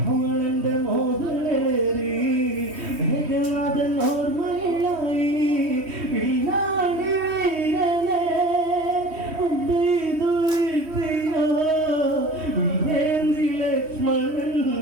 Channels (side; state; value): left; late; 3.1 ms